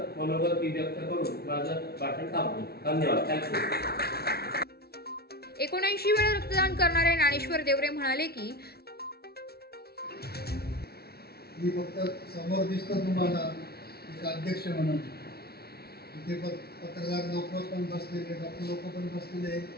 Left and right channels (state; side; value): late; right; 0.45 ms